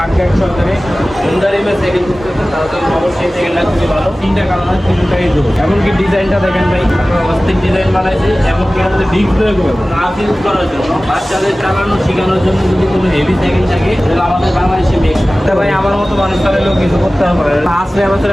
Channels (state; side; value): normal; both; correlation 0.97